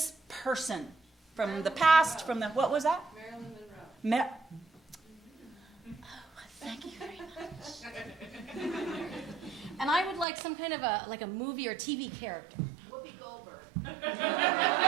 person from the past, from the, what was that? Marilyn Monroe. Thank you very much. And I would like some kind of a movie or TV character. Whoopi Goldberg.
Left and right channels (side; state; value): left; drops out; at 10.2 s